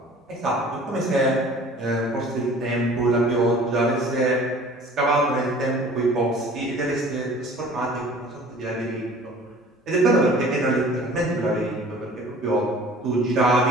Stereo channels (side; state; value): both; normal; correlation 0.48